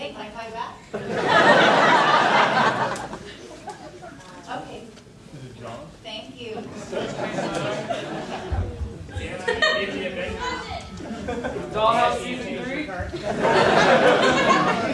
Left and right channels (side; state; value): both; identical; correlation 1.00